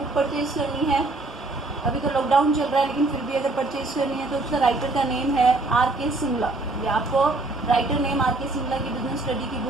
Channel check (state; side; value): quieter; left; 3.1 dB